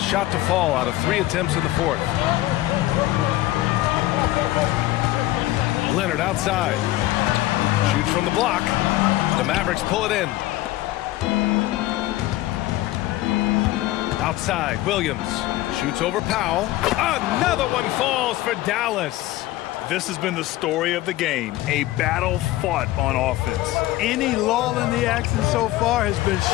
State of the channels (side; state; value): right; quieter; 16.6 dB